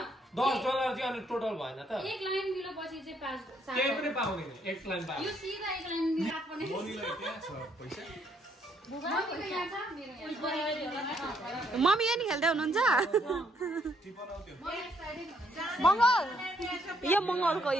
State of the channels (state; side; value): normal; both; correlation 0.71